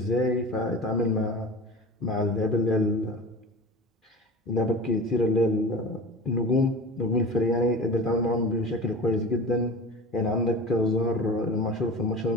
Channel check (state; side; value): normal; both; correlation 0.34